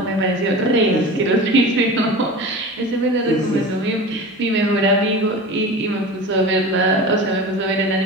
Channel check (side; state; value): both; normal; correlation 0.33